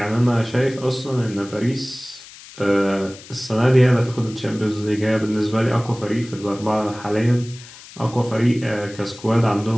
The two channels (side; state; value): left; noise; hiss, 18 dB below the sound